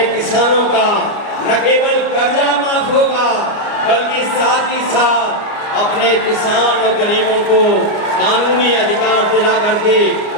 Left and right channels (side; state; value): right; late; 29 ms